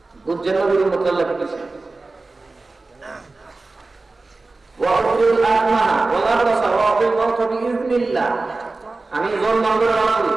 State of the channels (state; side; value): quieter; left; 3.4 dB